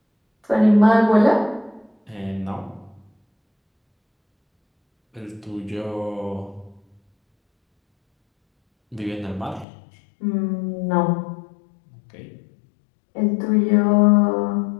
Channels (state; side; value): drops out; right; at 9.7 s